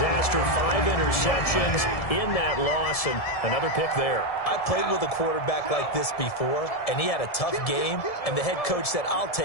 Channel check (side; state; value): right; late; 1.7 ms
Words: 5 interceptions in that loss, and another pick there. I played with a quarterback like this before, and he had a tough game, and the head coach said, I'll